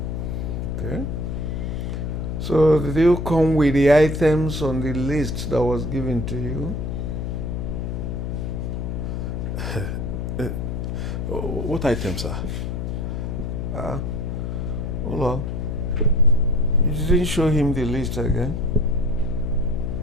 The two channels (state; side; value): noise; left; hum, 3 dB below the sound